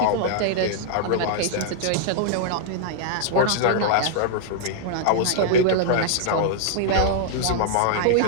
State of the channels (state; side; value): different; both; correlation -0.01